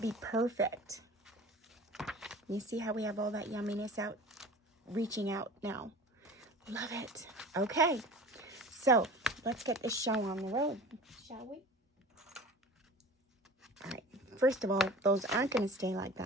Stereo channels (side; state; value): both; normal; correlation 0.40